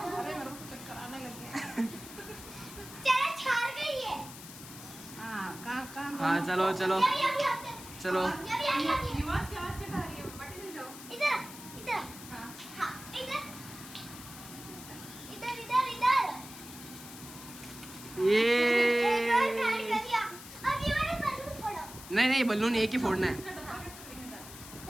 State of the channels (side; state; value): left; noise; hiss, 14 dB below the sound